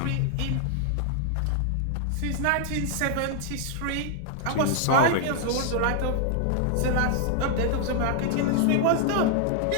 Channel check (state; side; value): different; both; correlation 0.00